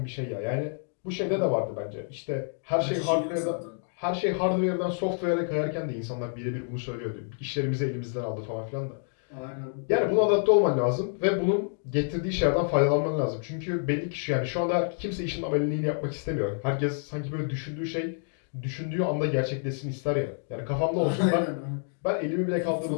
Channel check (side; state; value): right; silent; 59 dB below the other